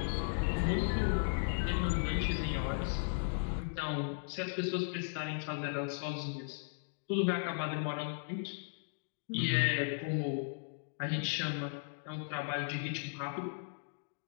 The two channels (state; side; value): silent; right; digital silence